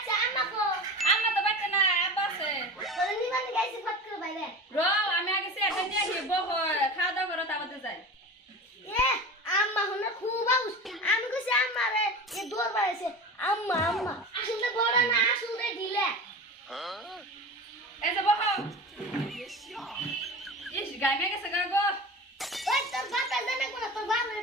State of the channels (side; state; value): both; normal; correlation 0.31